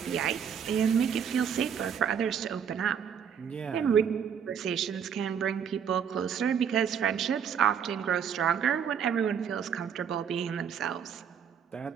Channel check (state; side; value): quieter; left; 7.7 dB